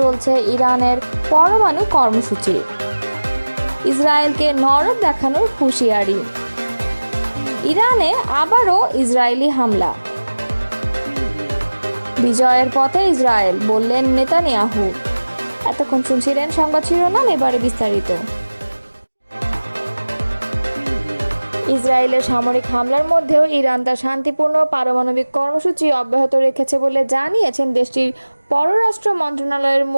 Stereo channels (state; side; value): inverted; both; correlation -1.00